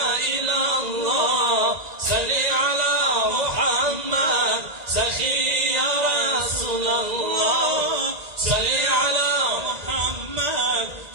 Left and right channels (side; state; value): left; late; 1.9 ms